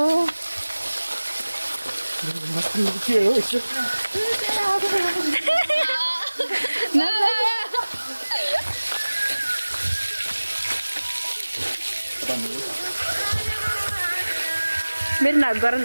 के हो यसो मेरो नाच गर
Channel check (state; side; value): inverted; both; correlation -1.00